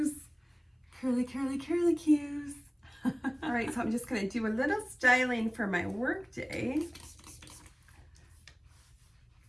Curly, curly, curly cues. All right, so I'm just going to do a little styling for my work day.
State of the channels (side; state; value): both; identical; correlation 1.00